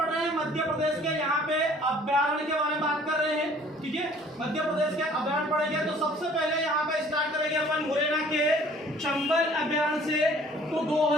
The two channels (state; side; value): normal; both; correlation 0.54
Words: रहे हैं मध्य प्रदेश के यहाँ पे अभ्यारण्य के बारे में बात कर रहे हैं। ठीक है, मध्य प्रदेश के अभ्यारण्य पढ़ेंगे तो सबसे पहले यहाँ पे स्टार्ट करेंगे अपन मुरैना के चंबल अभ्यारण्य से। तो